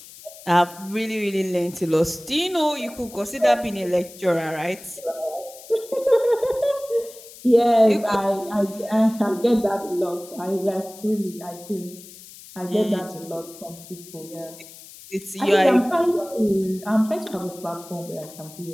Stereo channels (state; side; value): noise; left; hiss, 18 dB below the sound